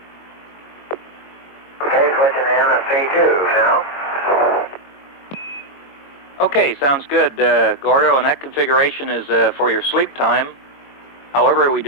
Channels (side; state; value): right; late; 22 ms